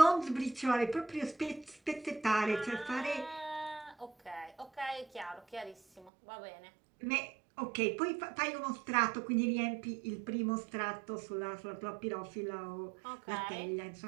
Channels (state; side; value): drops out; left; at 6.1 s